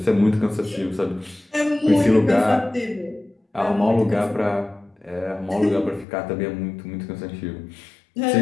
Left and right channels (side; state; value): right; drops out; at 6.1 s